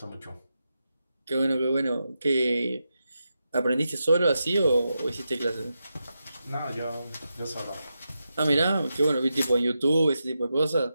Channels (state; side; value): inverted; both; correlation -0.88